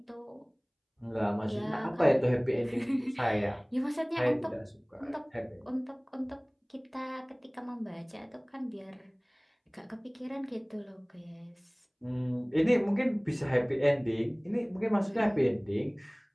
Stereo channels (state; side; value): identical; both; correlation 1.00